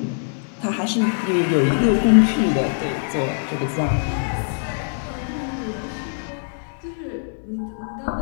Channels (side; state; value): right; silent; digital silence